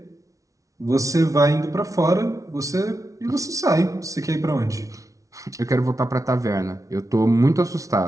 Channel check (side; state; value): left; late; 0.16 ms